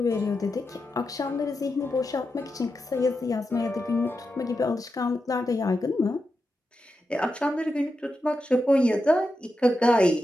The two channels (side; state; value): both; normal; correlation 0.88